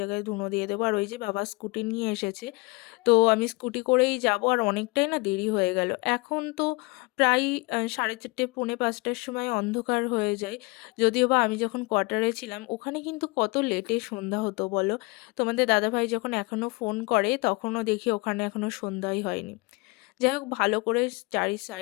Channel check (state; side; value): quieter; right; 26.6 dB